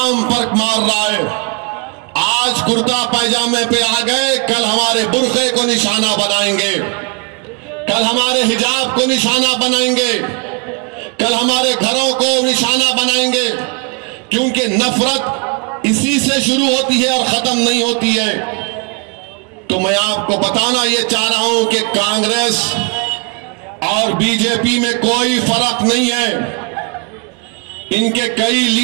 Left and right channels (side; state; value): left; quieter; 33.7 dB